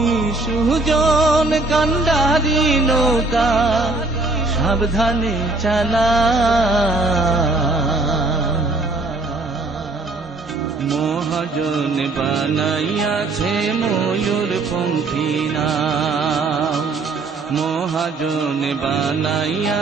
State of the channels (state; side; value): quieter; left; 3.3 dB